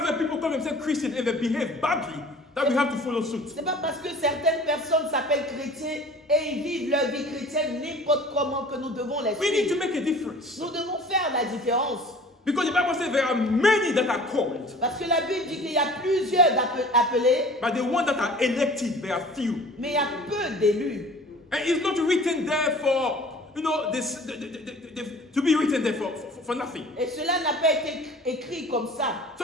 people call themselves Christian and they behave badly that we have to follow suit. C'est pas parce que certaines personnes s'appellent chrétiens et ils vivent leur vie chrétienne n'importe comment que nous devons les We need to suivre. make a difference. Nous devons faire la différence. Because the Bible says there are many that are called, Parce que la Bible dit qu'il y a plusieurs appelés, but the ones that are elected, there are few. mais il y a peu d'élus. And it's not written there for, to be written there for nothing. Et cela n'a pas été écrit comme ça.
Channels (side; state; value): both; normal; correlation 0.46